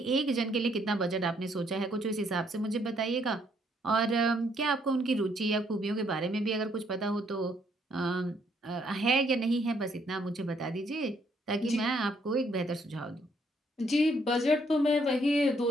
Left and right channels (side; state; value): both; normal; correlation 0.69